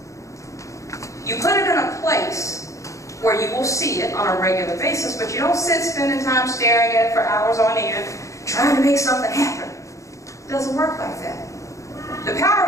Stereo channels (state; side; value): late; right; 0.15 ms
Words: You put it in a place where you will see it on a regular basis, but you don't sit spending time staring at it for hours on end, trying to make something happen. It doesn't work like that. The